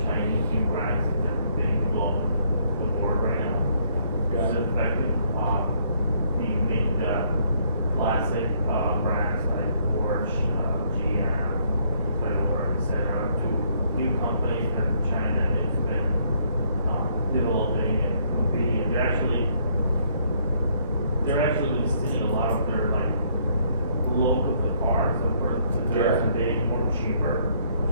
Chinese new brands that are being global the board right now. Yeah. It's effective. We make the classic brands like Porsche, GM, Toyota, etc. to new companies that China has been developing and improving, and they're actually stealing a lot of their like look of the cars that they're being more cheaper, which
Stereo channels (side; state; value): both; inverted; correlation -0.67